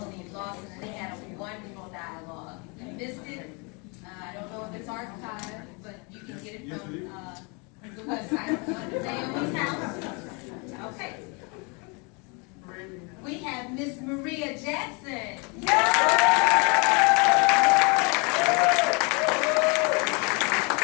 Lawson, and they had a wonderful dialogue. If you missed it, I don't know if it's archived, but you can get it from the website, Naomi House. Okay. We have Miss Maria Jackson.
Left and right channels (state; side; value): quieter; right; 31.8 dB